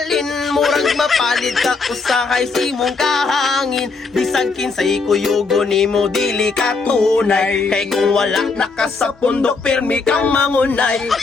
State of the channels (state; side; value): quieter; right; 4.3 dB